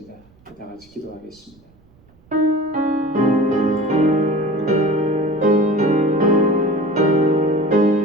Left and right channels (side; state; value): right; noise; rumble, 30 dB below the sound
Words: 다 같이 기도하겠습니다.